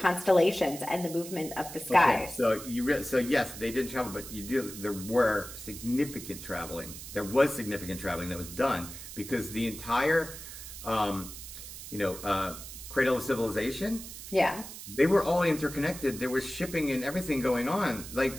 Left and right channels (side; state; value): right; noise; hiss, 12 dB below the sound